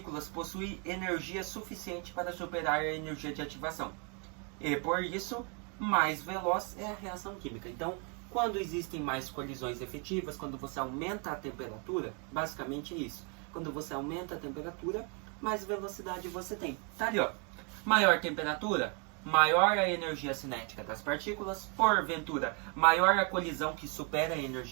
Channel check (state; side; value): quieter; left; 36.0 dB